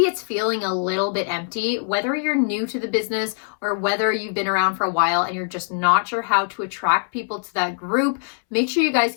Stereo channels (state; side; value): silent; right; 64 dB below the other